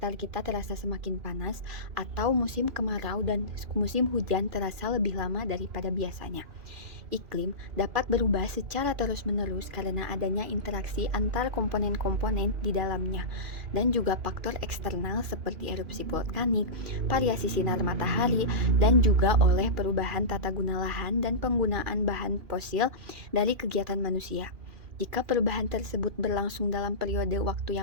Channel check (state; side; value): late; left; 2.4 ms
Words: kita terasa semakin panas atau musim kemarau dan musim hujan terasa lebih lama daripada biasanya. Iklim dapat berubah secara terus-menerus karena adanya interaksi antar komponen-komponen di dalamnya dan juga faktor eksternal seperti erupsi vulkanik, variasi sinar matahari, dan juga oleh perubahan tata guna lahan dan penggunaan bahan fosil dari kegiatan manusia. Jika perubahan tersebut berlangsung dalam periode waktu